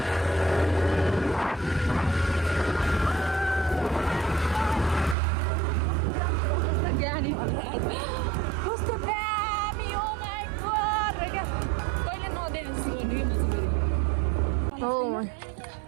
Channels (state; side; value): drops out; left; at 5.2 s